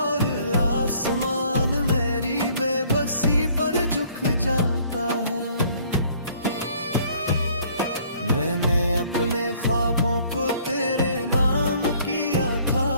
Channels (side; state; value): both; inverted; correlation -0.59